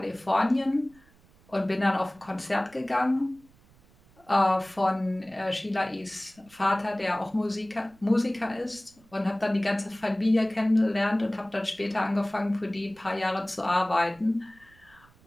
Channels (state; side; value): noise; right; rumble, 29 dB below the sound